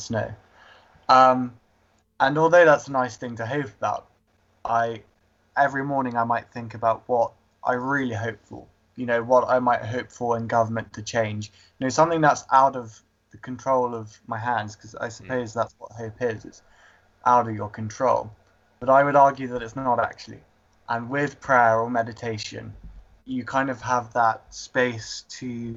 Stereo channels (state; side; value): identical; both; correlation 1.00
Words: And although that's a nice thing to hope about, every morning I might think about what I really hope for. What I might hope for in government to change. Something that's out of the control of my hands, because I suppose that's what hope is. It's out of your control. But I would argue that it's not actually. And with prayer or meditation, you kind of have that space